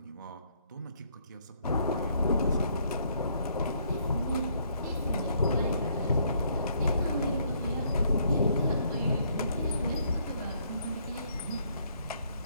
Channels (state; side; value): inverted; both; correlation -0.68